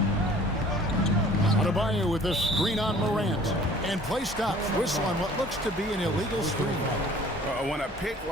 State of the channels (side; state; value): both; normal; correlation 0.51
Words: Adebayo with a screen on Morant. And play stops. Whistle on what looks to be an illegal screen. When a pick